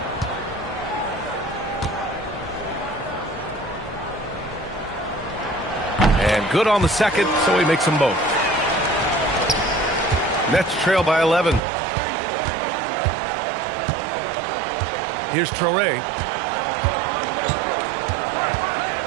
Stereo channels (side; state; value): left; drops out; at 11.6 s